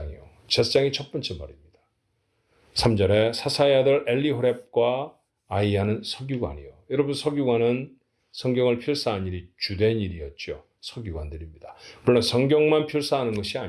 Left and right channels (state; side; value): identical; both; correlation 1.00